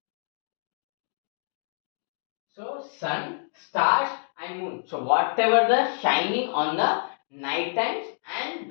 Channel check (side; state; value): right; silent; digital silence